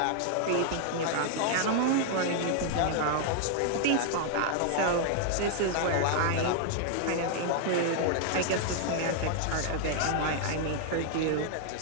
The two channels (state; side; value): different; both; correlation 0.00